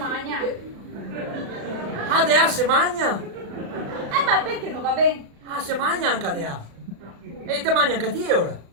Dea se magna? Ma perché non va bene? Se magna anche Dea. E te mangia anche te ora?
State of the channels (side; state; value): left; late; 36 ms